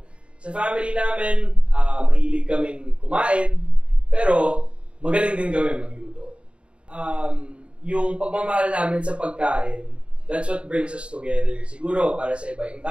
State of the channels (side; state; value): left; late; 0.058 ms